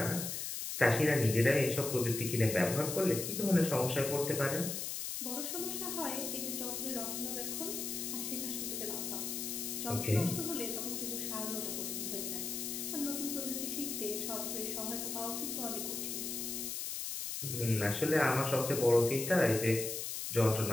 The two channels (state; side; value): noise; left; hiss, 4 dB below the sound